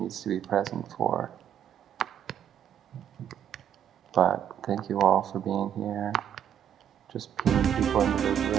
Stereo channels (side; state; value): left; quieter; 9.5 dB